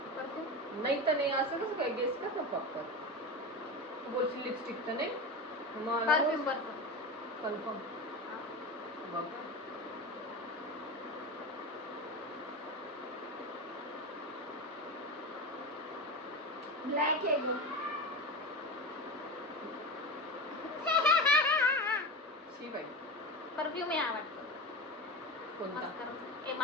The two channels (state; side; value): normal; both; correlation 0.23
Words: परफ्यूम नाही तर नाही. असं कसं काय गेस कर ना फक्त. तू बोलशील लिपस्टिक तर नाही. Perfume perfume confirm. बघ ब्लॅक आहे एकदम. शी बाई. परफ्यूम आहे आवडतं. कोणता? ए